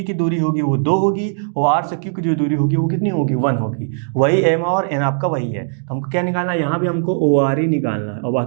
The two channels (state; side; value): silent; left; digital silence